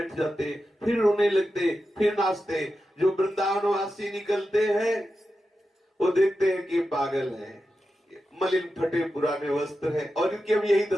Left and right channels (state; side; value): normal; both; correlation 0.90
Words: जाते, फिर रोने लगते, फिर नाचते। जो वृंदावनवासी निकलते हैं वो देखते हैं कि पागल है, मलिन फटे पुराने वस्त्र है, और इनकी अब यही